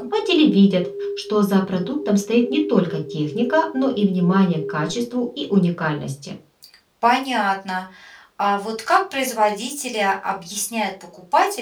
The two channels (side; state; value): both; identical; correlation 1.00